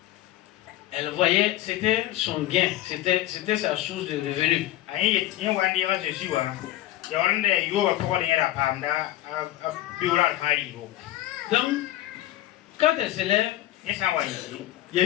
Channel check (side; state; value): right; quieter; 14.7 dB